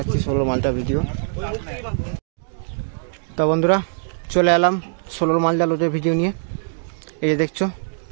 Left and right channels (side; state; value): left; silent; digital silence